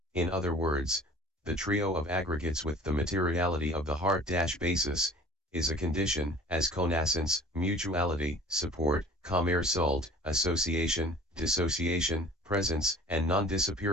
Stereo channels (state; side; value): normal; both; correlation 0.46